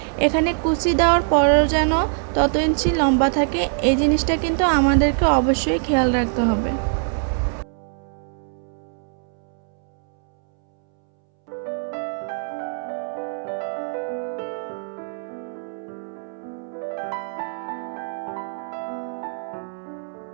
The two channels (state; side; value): silent; left; 63 dB below the other